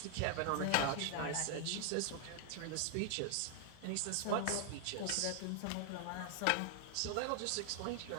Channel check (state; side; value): different; both; correlation 0.00